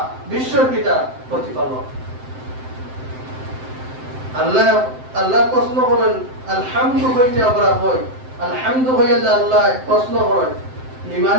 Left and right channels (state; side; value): late; left; 7.7 ms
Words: বিশ্বর পিতা প্রতিপালক। আল্লাহ প্রশ্ন করেন আলহামদু হইতে আমরা হই, আলহামদু হইয়া আল্লাহ প্রশ্ন করেন